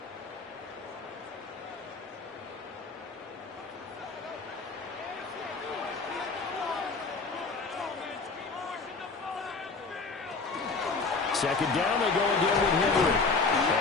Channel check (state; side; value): quieter; right; 4.2 dB